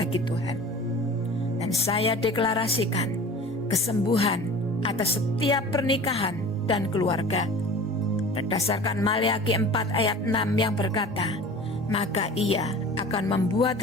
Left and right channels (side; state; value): both; normal; correlation 0.40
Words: Tuhan. Dan saya deklarasikan kesembuhan atas setiap pernikahan dan keluarga. Berdasarkan Maleakhi 4 ayat 6 yang berkata, maka ia akan membuat